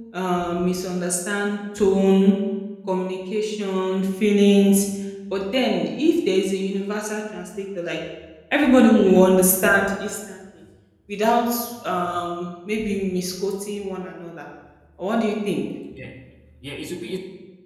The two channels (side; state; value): both; identical; correlation 1.00